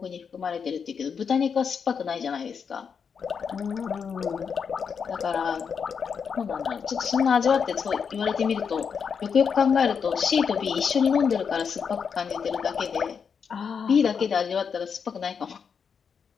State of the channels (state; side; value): quieter; right; 6.5 dB